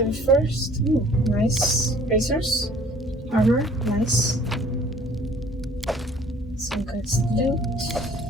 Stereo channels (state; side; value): normal; both; correlation 0.54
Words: first. Ooh, nice. Racers. Armor, nice. Some good loot.